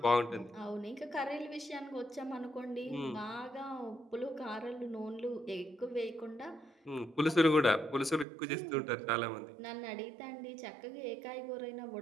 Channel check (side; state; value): left; drops out; at 8.2 s